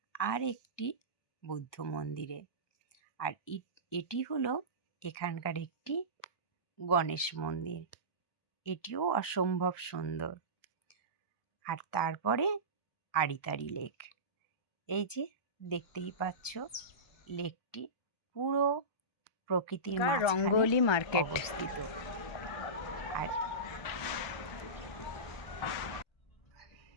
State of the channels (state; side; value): late; right; 1.2 ms